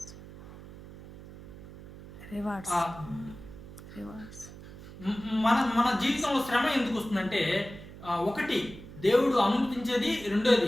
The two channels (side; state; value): right; noise; hum, 16 dB below the sound